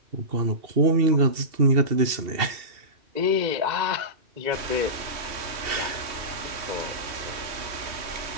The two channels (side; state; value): left; late; 2.7 ms